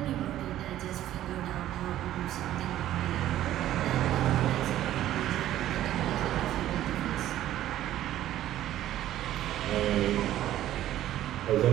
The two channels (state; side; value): quieter; left; 13.0 dB